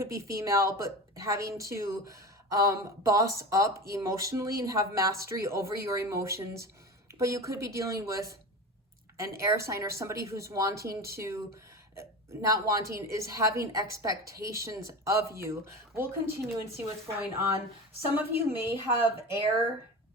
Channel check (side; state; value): both; normal; correlation 0.29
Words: be female, but having to boss up emotionally and have mastery over your emotions. But you could be dealing with an air sign or somebody who's is having expectations of you. We'll continue and see what's going on. Some of you may have air,